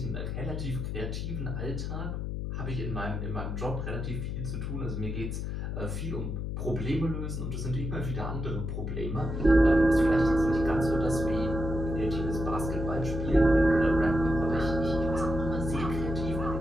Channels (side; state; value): left; noise; hum, 3 dB below the sound